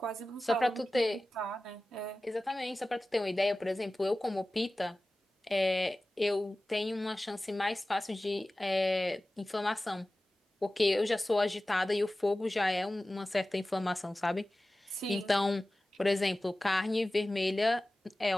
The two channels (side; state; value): both; normal; correlation 0.96